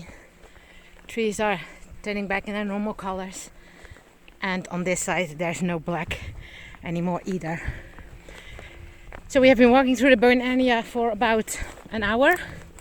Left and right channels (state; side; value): identical; both; correlation 1.00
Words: trees are turning back in their normal colors. And on this side there's no black anymore either. So we have been walking through the burn area for about an hour